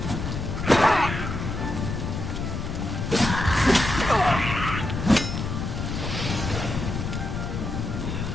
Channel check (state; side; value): noise; left; rumble, 4 dB below the sound